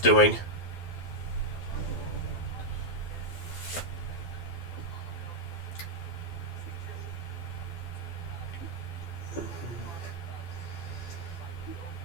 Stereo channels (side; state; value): right; late; 12 ms